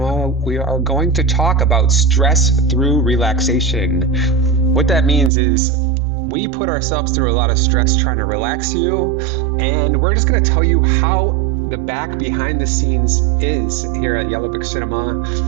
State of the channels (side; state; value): left; drops out; at 5.3 s